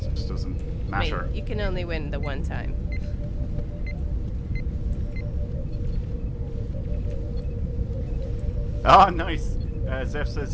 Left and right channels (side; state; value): both; identical; correlation 1.00